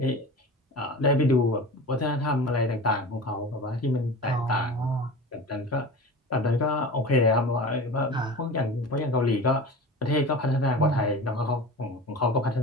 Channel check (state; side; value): normal; both; correlation 0.34